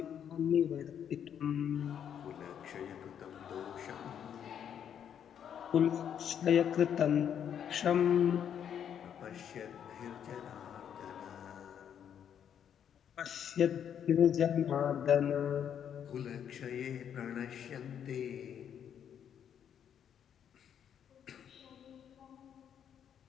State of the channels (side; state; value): right; quieter; 8.8 dB